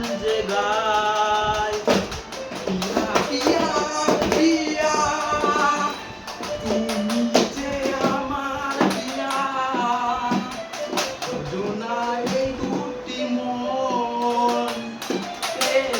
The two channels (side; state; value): both; identical; correlation 1.00